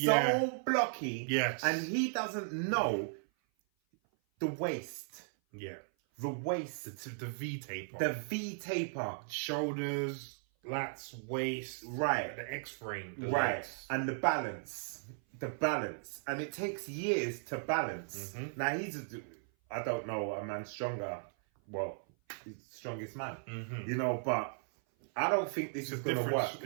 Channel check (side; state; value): left; silent; 54 dB below the other